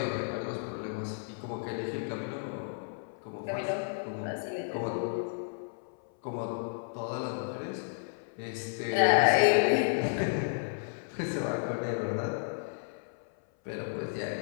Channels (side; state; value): right; silent; 56 dB below the other